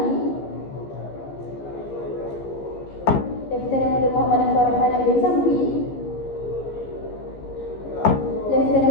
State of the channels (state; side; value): late; right; 15 ms